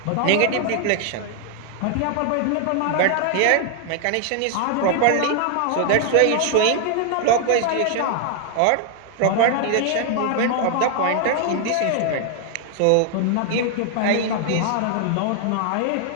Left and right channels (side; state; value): both; different; correlation 0.00